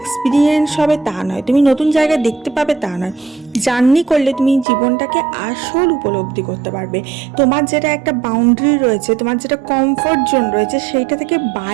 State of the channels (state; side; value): drops out; left; at 4.7 s